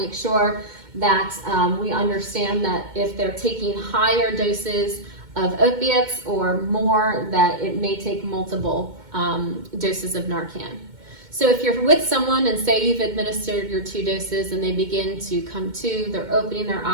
sure that we understand that if they're taking higher doses of opiates or more, that it may take multiple doses of Narcan. So if you're with someone and say you've administered your 2 doses and they begin to come to, they're opening their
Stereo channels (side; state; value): left; late; 2.2 ms